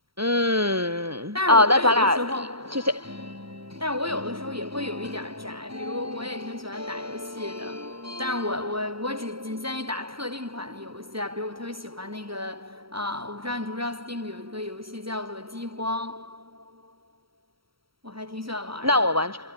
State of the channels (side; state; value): left; late; 0.75 ms